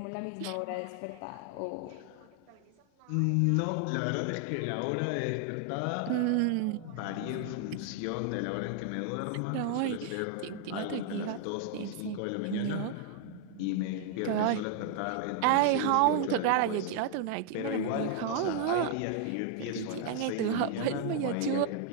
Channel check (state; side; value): different; both; correlation 0.00